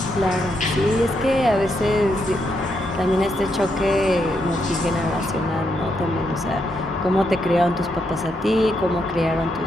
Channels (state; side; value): normal; both; correlation 0.79